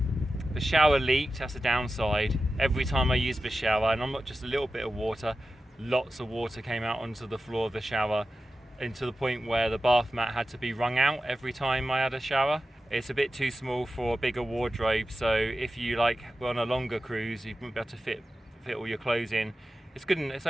shower leaked, that's a downside. Every time I used the shower, and I'm not just a little bit of water, lots of water came out onto the floor of the shower, and to the point where the bath mat had to be wrung out every time I had a shower. It's a bit too small for a bigger wardrobe, so if you were on a longer cruise, you wouldn't be able to fit all your clothes in. It's good, and it's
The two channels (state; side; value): normal; both; correlation 0.93